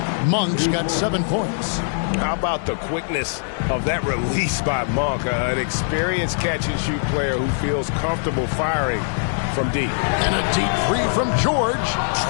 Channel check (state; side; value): silent; right; digital silence